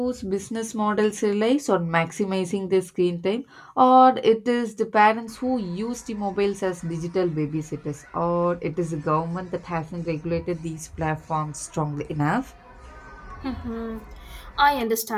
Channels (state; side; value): identical; both; correlation 1.00